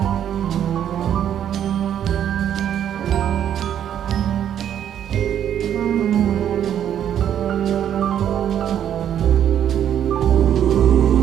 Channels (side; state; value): left; quieter; 9.9 dB